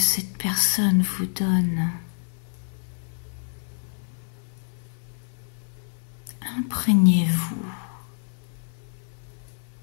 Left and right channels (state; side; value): silent; right; 60 dB below the other